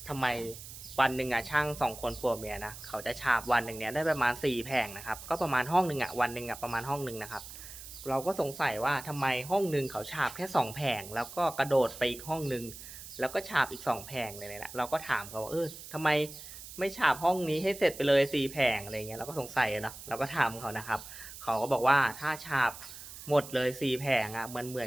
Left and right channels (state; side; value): noise; right; hiss, 13 dB below the sound